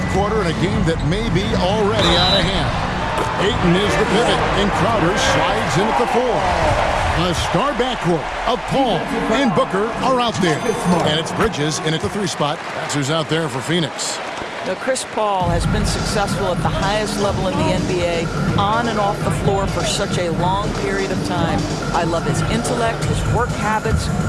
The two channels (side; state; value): both; identical; correlation 1.00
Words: quarter in a game that may be already out of hand. Ayton is the pivot, and Crowder slides in at the 4. A star backcourt of Paul and Booker are out there. And it's Bridges in at the 3 spot. That's who's out there for Phoenix. Now, Chris Paul has been successful at the highest level in the NBA, on and off the floor for such a long period of time. I love his intellect, his work habits,